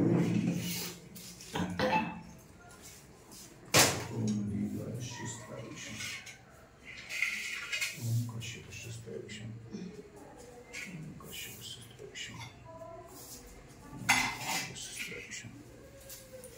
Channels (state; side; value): identical; both; correlation 1.00